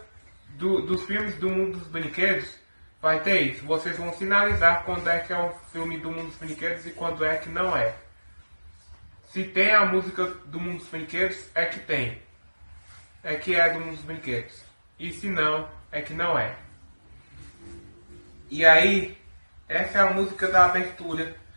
dos filmes do mundo dos brinquedos vai ter isso. Vocês vão sinalizar quando é que é o filme do mundo dos brinquedos e quando é que não é. Se tem a música do mundo dos brinquedos, é que tem. É que é do mundo dos brinquedos. E se não, é que não é. E aí, essa é a música da abertura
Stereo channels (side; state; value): both; inverted; correlation -1.00